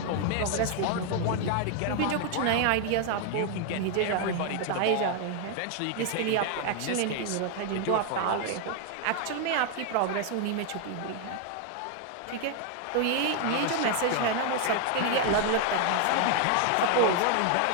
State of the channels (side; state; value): both; different; correlation 0.00